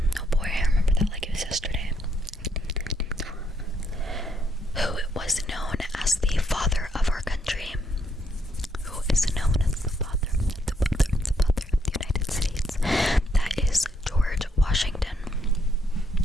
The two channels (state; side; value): normal; both; correlation 0.74